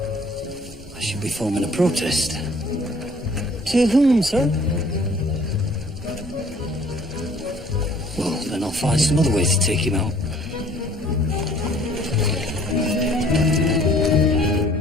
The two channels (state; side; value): normal; both; correlation 0.56